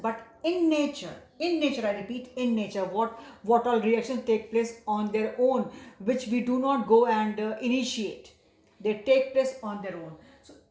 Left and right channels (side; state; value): both; identical; correlation 1.00